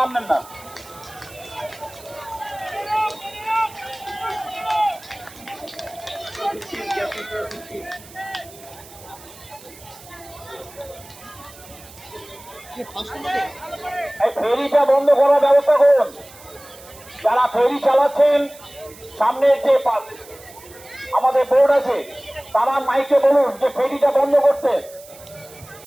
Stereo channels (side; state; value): right; noise; hiss, 20 dB below the sound